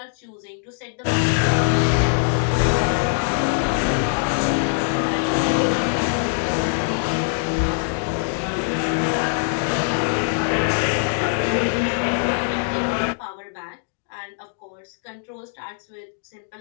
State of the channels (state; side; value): silent; right; digital silence